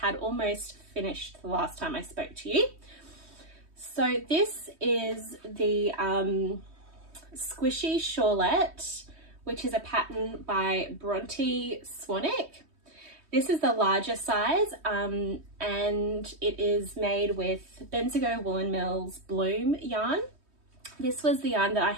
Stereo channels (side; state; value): left; late; 3.2 ms